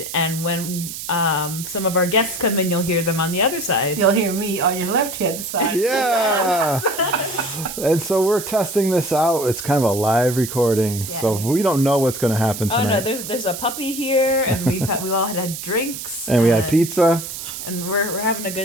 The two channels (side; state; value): right; noise; hiss, 8 dB below the sound